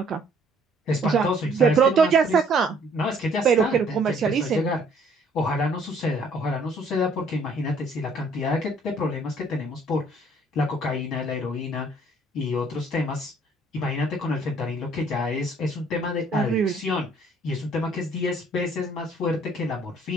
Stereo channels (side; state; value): both; normal; correlation 0.61